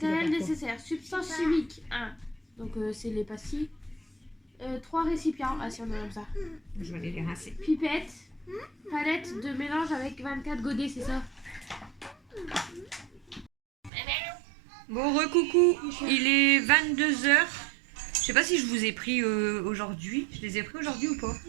dois Matériel faire quoi? nécessaire. Substance chimique 1. Donc, c'est les pastilles. 3 récipients. Ah, si, on a comme ça. Je vais aller les rincer. Pipette. Palette de mélange avec 24 godets, c'est ça? Bon, recoucou, il est 22h. Je sais pas si je vous ai pris aujourd'hui. Je les ai pris aujourd'hui ou pas?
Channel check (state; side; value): drops out; left; at 13.9 s